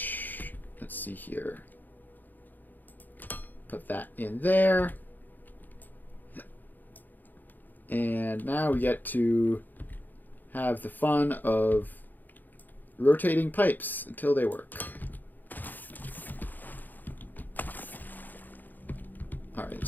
let's see here. Put that in there. And now we get to have the fun of rotating pipes until they work. Alright,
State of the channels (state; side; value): late; right; 0.086 ms